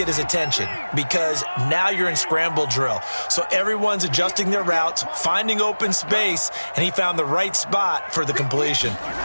his attention, because now you're in scramble drill. So everyone's adjusting their routes, finding open space, and he found the right spot for the completion.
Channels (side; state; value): both; inverted; correlation -1.00